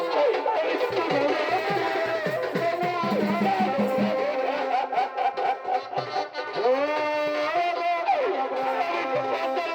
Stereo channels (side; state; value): both; identical; correlation 1.00